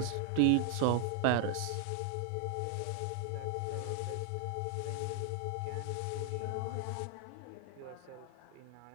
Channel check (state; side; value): different; both; correlation 0.00